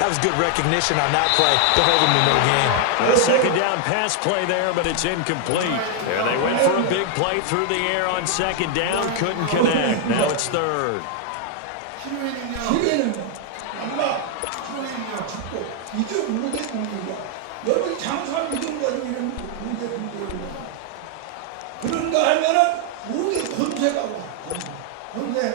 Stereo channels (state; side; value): different; both; correlation 0.00